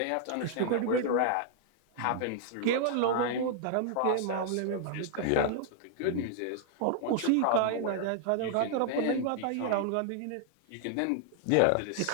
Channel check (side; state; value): both; different; correlation -0.01